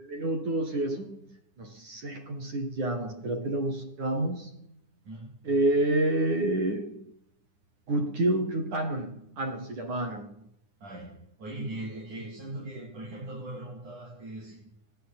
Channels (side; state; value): left; late; 9.9 ms